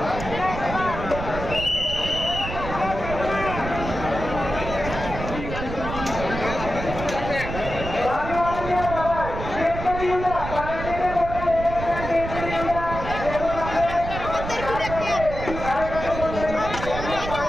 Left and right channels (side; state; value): right; noise; rumble, 7 dB below the sound